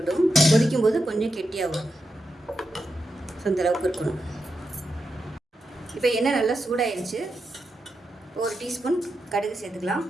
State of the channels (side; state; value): both; normal; correlation 0.87